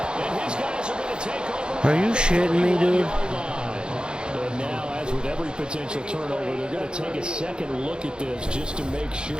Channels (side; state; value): left; late; 0.049 ms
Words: And his guys are going to take over. Are you shitting me, dude? And now, as with every potential turnover, they're going to take a second look at this just to make